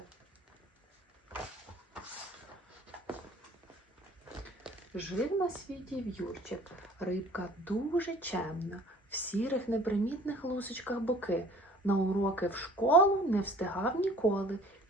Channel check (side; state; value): both; normal; correlation 0.50